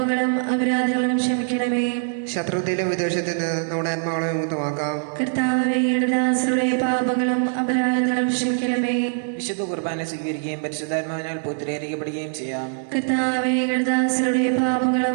അപരാധങ്ങളും ക്ഷമിക്കണമേ. ശത്രുതയിലും വിദ്വേഷത്തിൽ നിന്ന് നമ്മുടെ ആത്മാക്കളെ വിമുക്തമാക്കാം. കർത്താവേ, ദാസരുടെ പാപങ്ങളും അപരാധങ്ങളും ക്ഷമിക്കണമേ. വിശുദ്ധ കുർബാന സ്വീകരിക്കുകയും പരിശുദ്ധാത്മാവിനാൽ പൂർത്തീകരിക്കപ്പെടുകയും ചെയ്യാം. കർത്താവേ, ദാസരുടെ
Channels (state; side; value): silent; left; digital silence